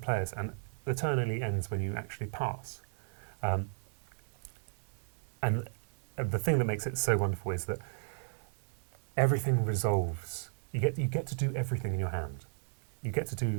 and the turn only ends when you actually pass. And the thing that makes it so wonderful is that everything resolves. You get to do everything in your hand. You get to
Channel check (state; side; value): silent; left; digital silence